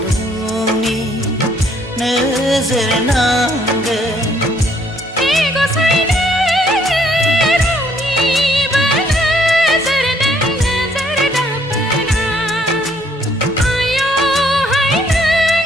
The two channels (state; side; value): normal; both; correlation 0.65